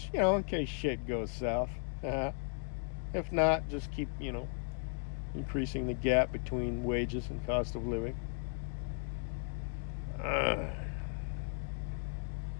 you know, in case shit goes south. If not, just keep, you know, increasing the gap between wages and cost of living.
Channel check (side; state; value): right; silent; 54 dB below the other